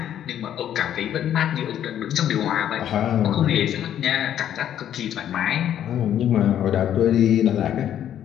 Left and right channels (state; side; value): quieter; right; 10.5 dB